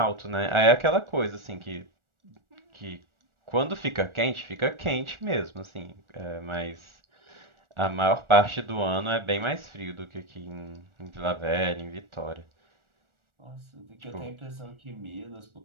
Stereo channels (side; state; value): left; late; 1.4 ms